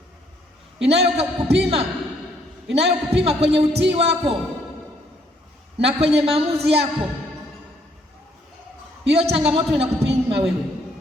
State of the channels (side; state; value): both; normal; correlation 0.68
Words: inayokupima kwenye utii wako na kwenye maamuzi yako, hiyo changamoto inakupima wewe.